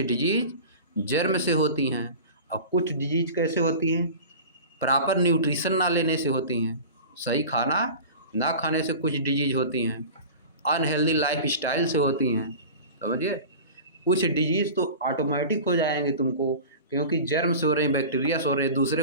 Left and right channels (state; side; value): inverted; both; correlation -0.36